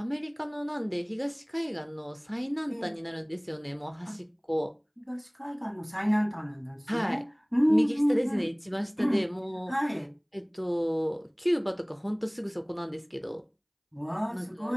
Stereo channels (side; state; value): both; identical; correlation 1.00